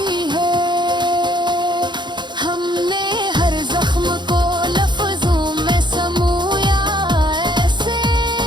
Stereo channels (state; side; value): late; left; 0.22 ms